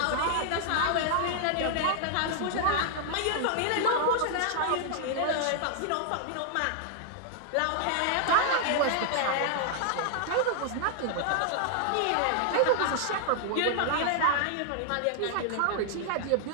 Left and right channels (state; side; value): different; both; correlation 0.00